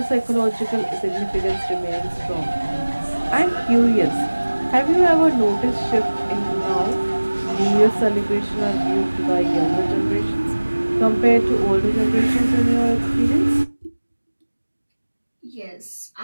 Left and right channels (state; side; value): inverted; both; correlation -1.00